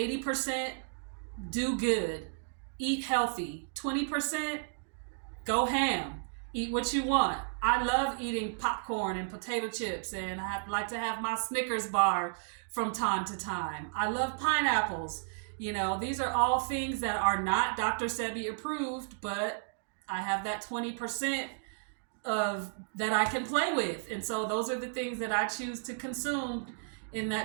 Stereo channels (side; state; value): left; silent; digital silence